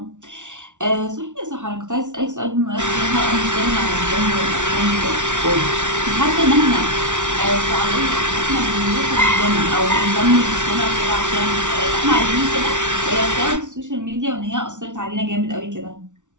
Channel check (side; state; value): left; late; 0.86 ms